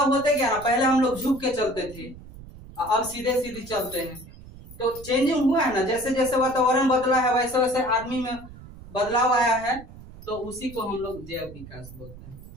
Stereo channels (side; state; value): right; noise; rumble, 17 dB below the sound